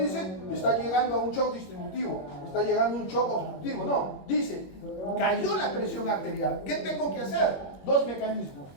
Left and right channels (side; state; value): right; late; 21 ms